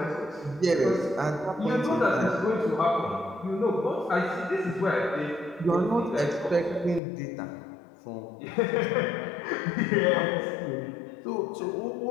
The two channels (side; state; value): right; drops out; at 7.0 s